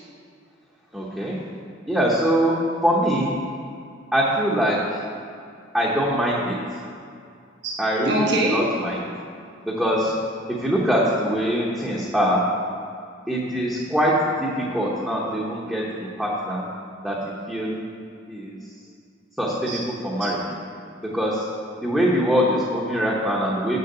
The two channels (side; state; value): both; normal; correlation 0.53